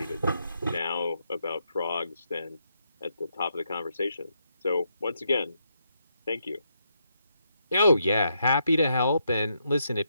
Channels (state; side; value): inverted; both; correlation -0.79